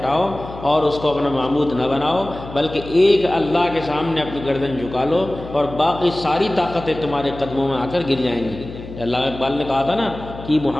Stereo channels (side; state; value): left; noise; hum, 13 dB below the sound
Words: اور اس کو اپنا معبود نہ بناؤ، بلکہ ایک اللہ کے سامنے اپنی گردن جھکا لو اور باقی ساری طاقتیں تمہارے قدموں میں آ کر گر جائیں گی۔ اللہ اقبال نے کہا تھا نا کہ